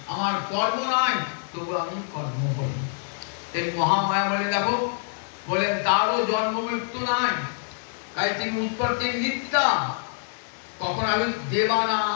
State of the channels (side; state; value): right; silent; digital silence